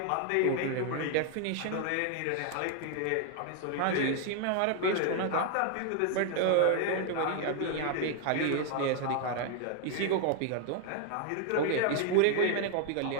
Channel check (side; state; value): both; different; correlation 0.00